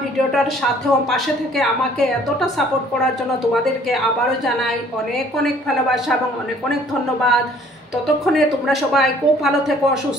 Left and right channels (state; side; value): normal; both; correlation 0.57